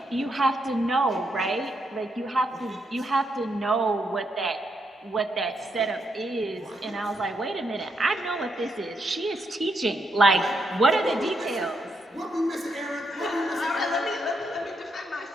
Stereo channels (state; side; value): normal; both; correlation 0.79